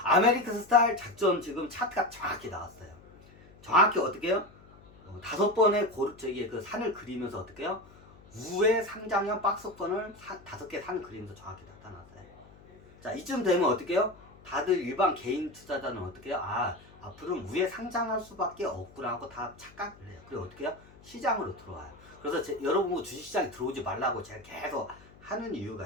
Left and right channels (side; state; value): left; noise; hum, 23 dB below the sound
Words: 아메리칸 스타일 작전 지금 차트가 정확히 나왔어요. 정확히 어떻게 해요? 5번의 그 산을 그리면서 어떻게 해요? 우회 상장형 박스권을 5개 산을 그리면서 정확히 나타났어요. 자, 이쯤 되면 어떻게 해요? 다들 일반 개인 투자자는 어떻게 해요? 앞으로는 우회 상장할 수밖에 없구나 하고 다 착각을 해요. 그리고 어떻게 해요? 시장으로 들어와요. 그래서 여러분 주식시장에 들어오지 말라고 제가 계속 하는